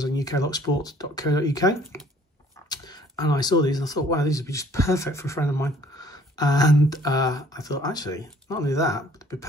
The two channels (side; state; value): both; normal; correlation 0.57